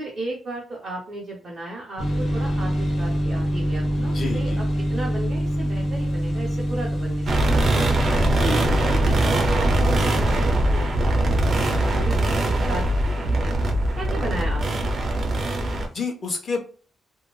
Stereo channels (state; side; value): normal; both; correlation 0.89